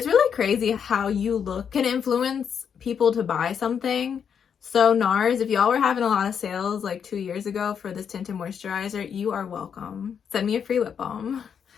really crazy how you look can influence people to buy something. So NARS, if y'all were having a lot of sales like 2 years ago for this Tinted Moisturizer, you are welcome. Send me a free lip balm.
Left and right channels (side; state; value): right; quieter; 7.5 dB